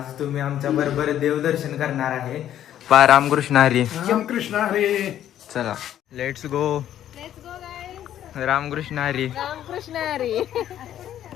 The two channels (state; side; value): quieter; right; 11.3 dB